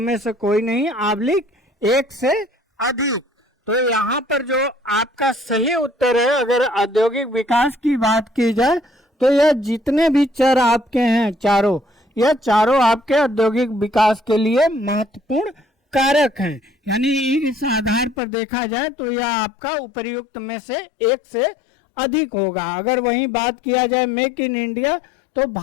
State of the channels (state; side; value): drops out; right; at 18.2 s